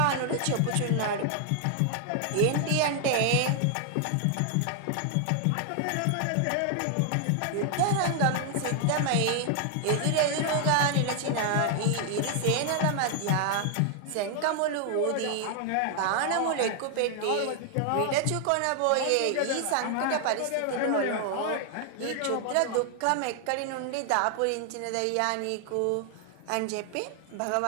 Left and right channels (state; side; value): different; both; correlation 0.00